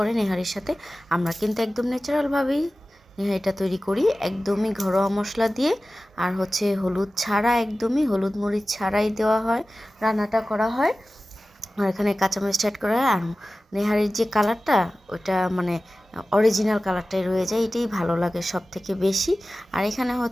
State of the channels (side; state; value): both; normal; correlation 0.96